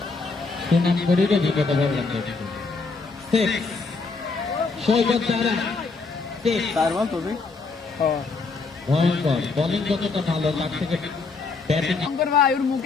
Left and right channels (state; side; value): quieter; right; 4.2 dB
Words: সুনাম করিলে বিপদ বললাম তো সৈকত তারা তারপর তবে ভয়ঙ্কর বোলিং যতটা ভালো তার থেকে ব্যাটিং শঙ্কর ভাই ওর